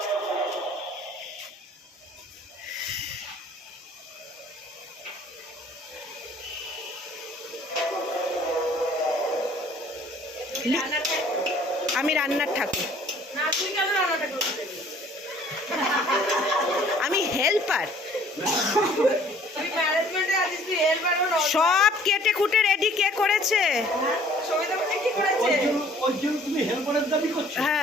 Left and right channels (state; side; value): normal; both; correlation 0.55